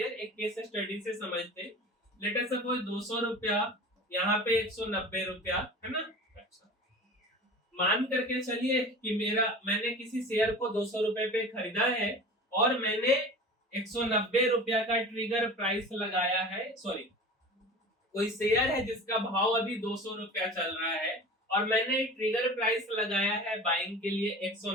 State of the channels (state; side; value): normal; both; correlation 0.37